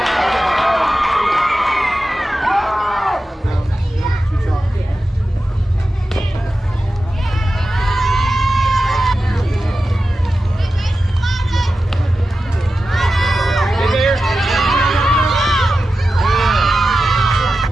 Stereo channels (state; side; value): normal; both; correlation 0.93